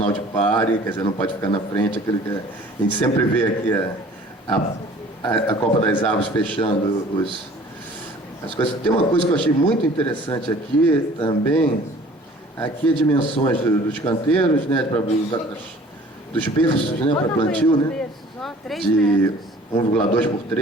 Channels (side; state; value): both; normal; correlation 0.50